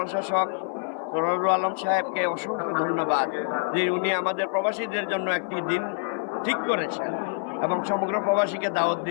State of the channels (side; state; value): right; silent; 57 dB below the other